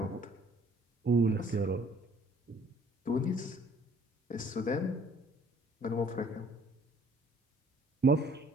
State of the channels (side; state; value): both; normal; correlation 0.58